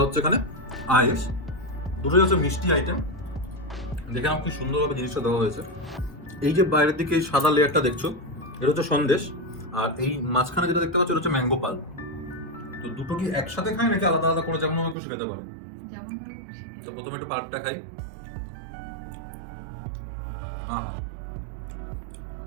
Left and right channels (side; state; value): left; drops out; at 15.0 s